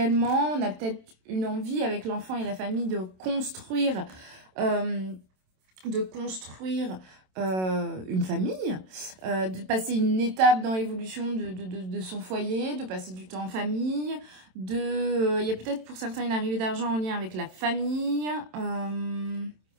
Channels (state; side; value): late; left; 27 ms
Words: On a peut-être une envie avec l'enfant et la famille de construire une famille, de passer une étape dans l'évolution de son foyer, de passer du temps en famille, il y a peut-être pour certains une arrivée d'argent en lien avec la famille.